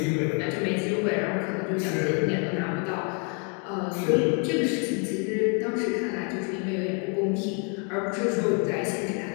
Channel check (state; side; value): quieter; right; 38.0 dB